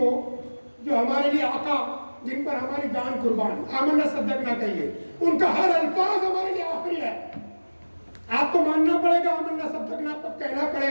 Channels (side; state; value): both; inverted; correlation -1.00